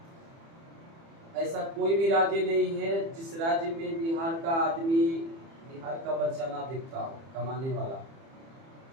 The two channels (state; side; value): late; left; 30 ms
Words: ऐसा कोई भी राज्य नहीं है जिस राज्य में बिहार का आदमी, बिहार का बच्चा ना दिखता हो कमाने वाला।